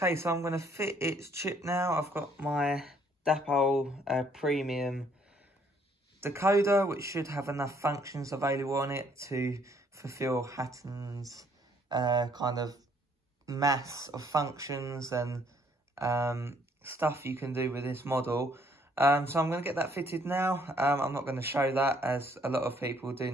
so I'm going to fit its chip now. I've got my Dapol Premium decoder, which should have enough functions available on it to fulfill Hattons' kind of mass of functions and stuff you can do with this model. So I'm going to get that fitted now. I'm not going to show that, as a lot of people do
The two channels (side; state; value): both; normal; correlation 0.65